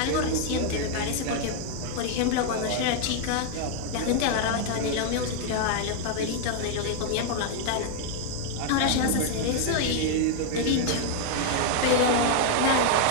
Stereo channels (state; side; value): different; both; correlation 0.00